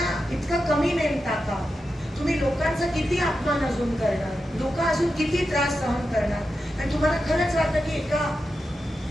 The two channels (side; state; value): both; normal; correlation 0.89